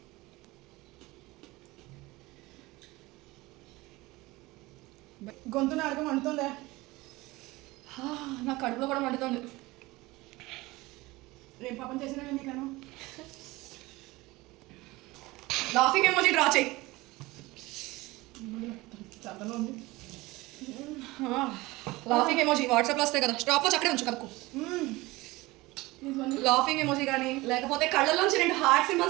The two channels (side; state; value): left; quieter; 20.8 dB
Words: గొంతున అడగ మండుతుందే. నా కడుపులో కూడా మండుతుంది. ఏం పాపం చేసినా నీకను. లాఫింగ్ ఎమోజీ డ్రా చేయి. లాఫింగ్ ఎమోజీ వాట్సాప్లో వస్తాయి కదా, స్టాప్ వాచ్ అక్కడే ఉంచు కదకు. లాఫింగ్ ఎమోజీ కానీ లేకపోతే కళ్ళలోంచి 2 హార్ట్